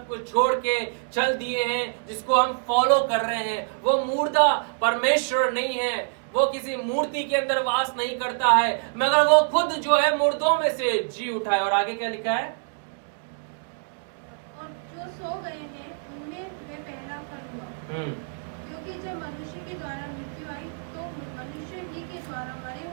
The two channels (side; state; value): left; silent; digital silence